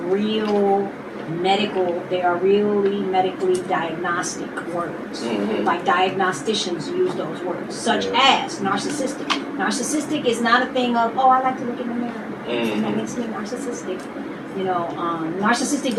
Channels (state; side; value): identical; both; correlation 1.00